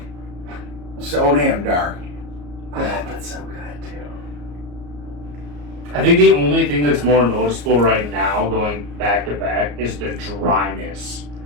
So damn dark. That That's so good too. I think the only thing that's more noticeable right now, going back to back, is the dryness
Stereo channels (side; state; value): left; late; 34 ms